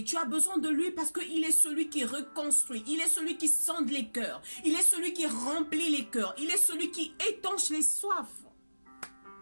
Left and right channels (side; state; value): both; inverted; correlation -1.00